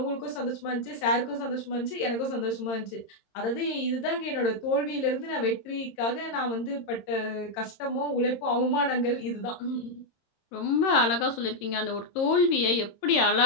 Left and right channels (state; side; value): late; right; 26 ms